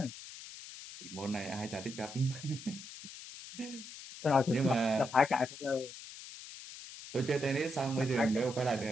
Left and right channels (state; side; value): noise; left; hiss, 13 dB below the sound